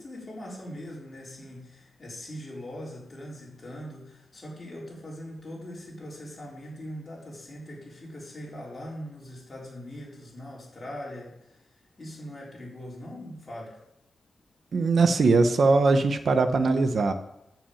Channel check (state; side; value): quieter; left; 3.0 dB